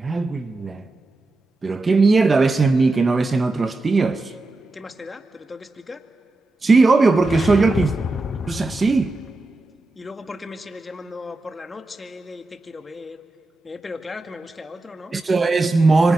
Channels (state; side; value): quieter; left; 3.0 dB